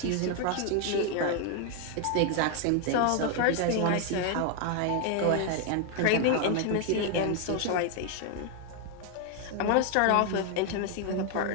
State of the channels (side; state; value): both; different; correlation 0.00